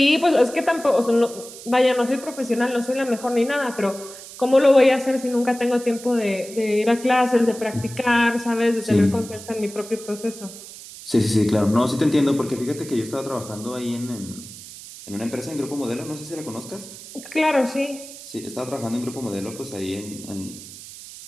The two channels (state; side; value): noise; right; hiss, 15 dB below the sound